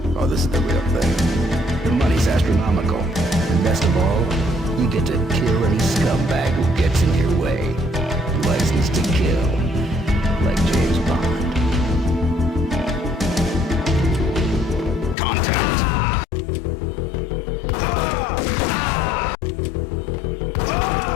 oh, this is the real thing. The money's astronomical. And best of all, you get to kill any scumbag who gets in your way. License to kill. Like James Bond.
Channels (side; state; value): right; drops out; at 15.2 s